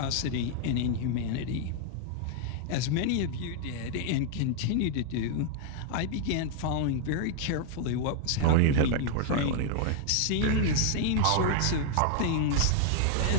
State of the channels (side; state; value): both; different; correlation 0.00